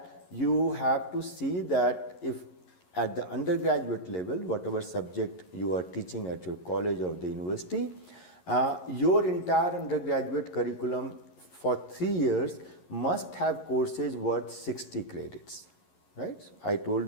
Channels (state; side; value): late; right; 11 ms